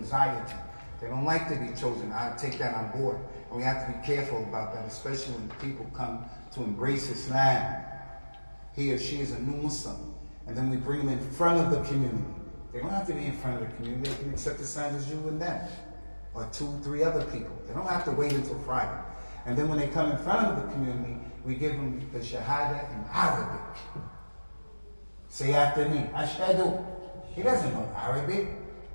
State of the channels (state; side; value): inverted; both; correlation -1.00